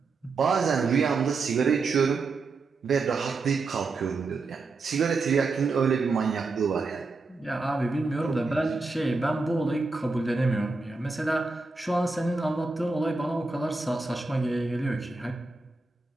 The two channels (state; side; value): quieter; left; 3.9 dB